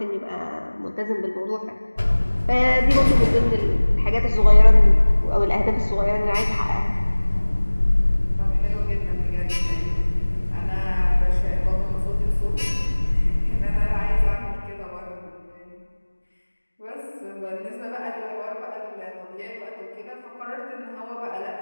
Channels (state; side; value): inverted; both; correlation -1.00